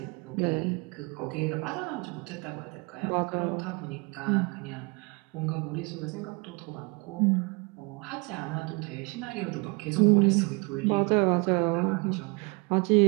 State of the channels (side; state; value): left; quieter; 28.9 dB